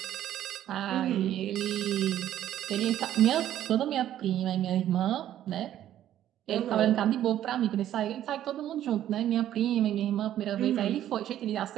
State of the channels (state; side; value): quieter; left; 11.8 dB